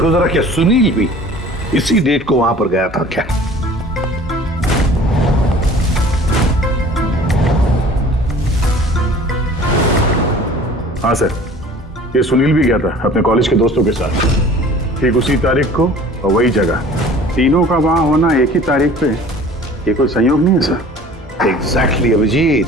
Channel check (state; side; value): normal; both; correlation 0.47